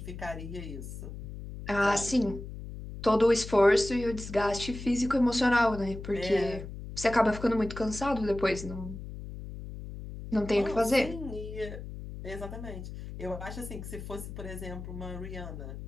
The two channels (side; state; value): left; noise; hum, 10 dB below the sound